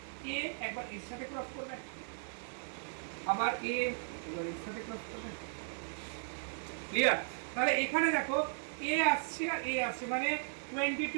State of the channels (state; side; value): silent; left; digital silence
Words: এ একবার এর সাথে ক্রস করবে, আবার এ এবার এর সাথে ক্রস করবে, ক্লিয়ার। তাহলে এখানে দেখো এ আসছে আর এ আসছে মানে